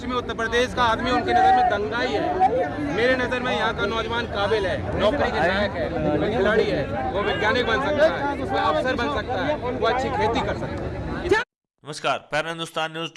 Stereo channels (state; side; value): identical; both; correlation 1.00